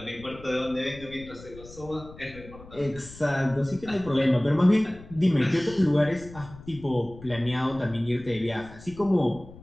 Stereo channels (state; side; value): noise; left; rumble, 18 dB below the sound